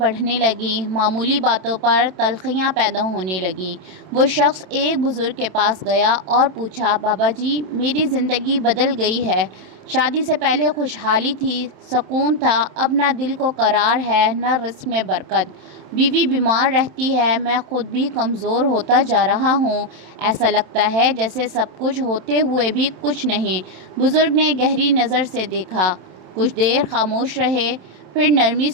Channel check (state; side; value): late; left; 27 ms